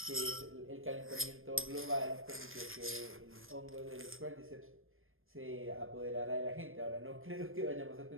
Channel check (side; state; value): left; late; 0.60 ms